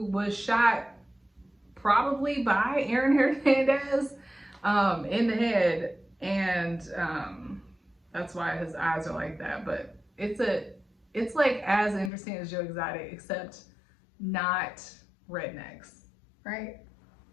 was shot probably by Aaron Hernandez in the head, and that's why his eyes are like that. But it's like as interesting as Joe Exotic, except not rednecks, right?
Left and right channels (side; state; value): right; drops out; at 12.1 s